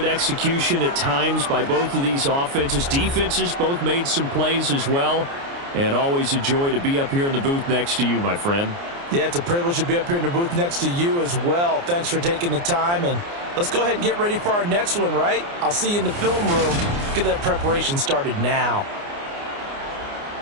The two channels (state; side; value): late; left; 29 ms